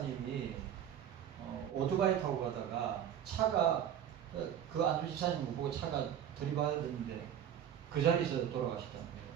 오토바이 타고 가다가 차가 그 안수집사님을 보고 차가 들이받아야 되는데 그 자리에서 돌아가셨다는 거예요.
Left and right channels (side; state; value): left; quieter; 9.8 dB